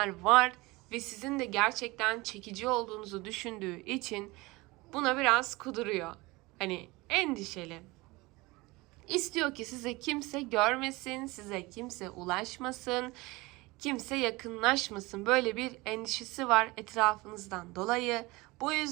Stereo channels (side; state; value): left; quieter; 22.5 dB